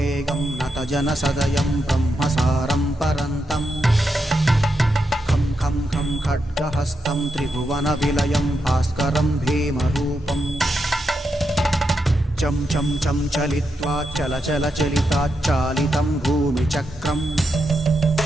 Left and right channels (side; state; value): both; normal; correlation 0.85